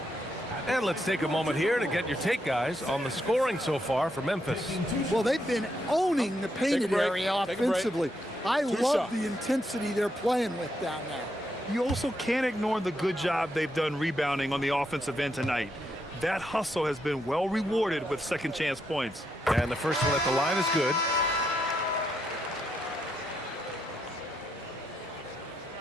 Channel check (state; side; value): normal; both; correlation 0.80